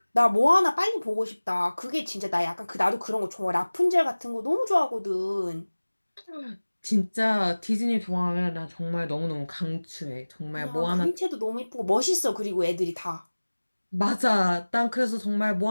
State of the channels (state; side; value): inverted; both; correlation -1.00